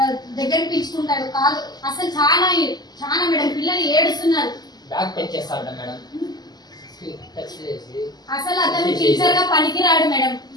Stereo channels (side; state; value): right; late; 0.20 ms